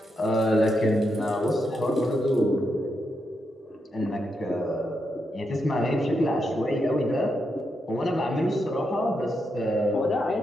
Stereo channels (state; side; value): normal; both; correlation 0.83